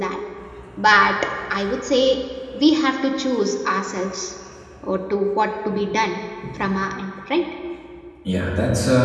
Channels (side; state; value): both; identical; correlation 1.00